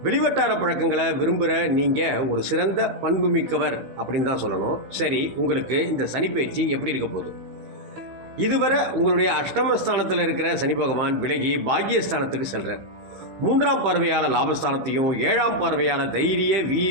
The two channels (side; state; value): left; late; 15 ms